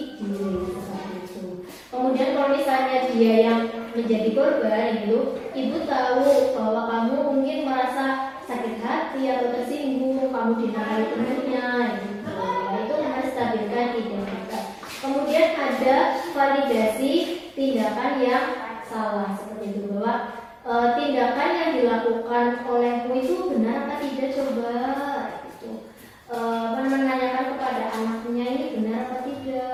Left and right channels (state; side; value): identical; both; correlation 1.00